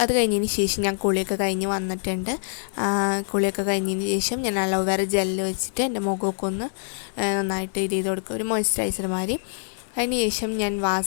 അത് കഴിഞ്ഞതിന് ശേഷം ഞാൻ കുളിയൊക്കെ കഴിഞ്ഞ് വന്നിട്ടുണ്ട്. കുളിയൊക്കെ കഴിഞ്ഞതിന് ശേഷം ഞാൻ അലോവേറ ജെല്ല് വെച്ചിട്ട് എൻ്റെ മുഖമൊക്കെ ഒന്ന് നന്നായിട്ട് ഇത് ചെയ്ത് കൊടുക്കുക, ഒരു മോയ്സ്ചറൈസർ മാതിരി. അതിനുശേഷം ഞാൻ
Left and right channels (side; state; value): right; silent; digital silence